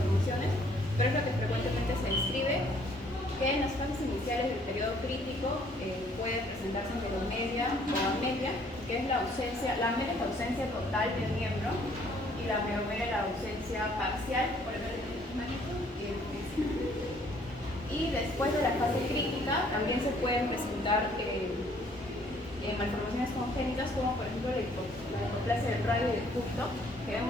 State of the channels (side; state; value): both; normal; correlation 0.62